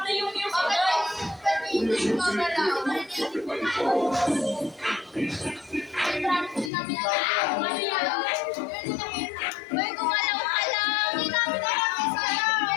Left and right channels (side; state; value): right; drops out; at 6.7 s